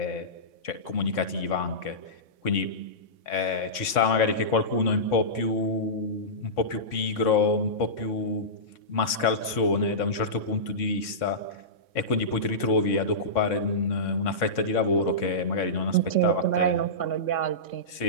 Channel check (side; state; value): right; late; 3.6 ms